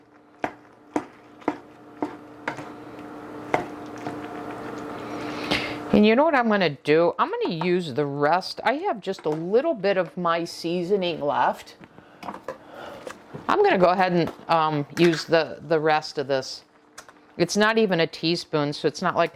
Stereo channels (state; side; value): identical; both; correlation 1.00